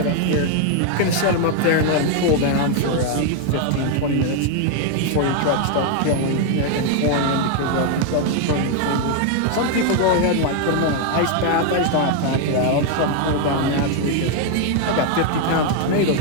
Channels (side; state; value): both; different; correlation 0.01